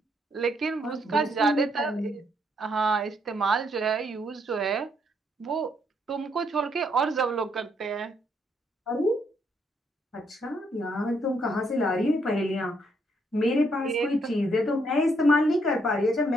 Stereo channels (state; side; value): normal; both; correlation 0.73